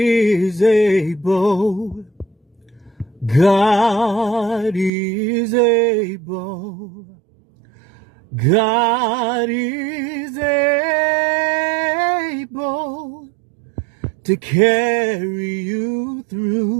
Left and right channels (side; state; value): left; drops out; at 4.9 s